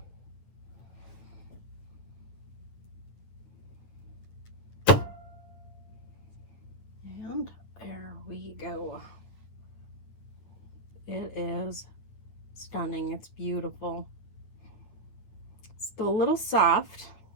And there we go. It is stunning. It's beautiful. Still a little soft.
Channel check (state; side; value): late; right; 9.7 ms